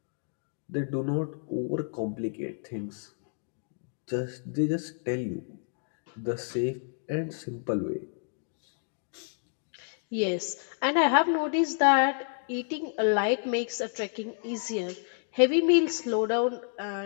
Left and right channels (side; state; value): right; silent; digital silence